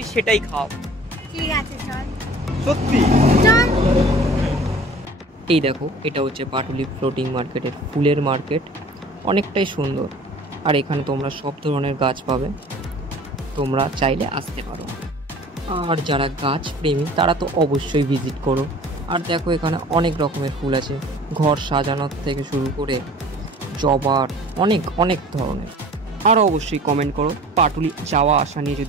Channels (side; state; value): both; normal; correlation 0.46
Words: সেটাই খাও। ঠিক আছে, চল। সত্যি? চল। এই দেখো, এটা হচ্ছে পাটুলি ফ্লোটিং মার্কেটের ফুলের মার্কেট। অনেকটাই সুন্দর, আর এখানে তোমরা সব ধরনের গাছ পাবে, তোমরা চাইলে আসতে পারো। আর যারা গাছ প্রেমী তারা তো অবশ্যই ভিজিট করো। আর দেখো, এখানে অনেক রকমের ফুল আছে, ঘর সাজানোর থেকে শুরু করে জবার, অনেক অনেক ধরনের। আর অবশ্যই কমেন্ট করো পাটুলি যাওয়া আসা নিয়ে